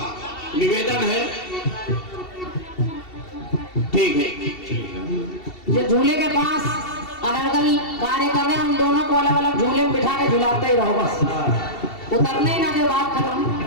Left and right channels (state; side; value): late; right; 2.7 ms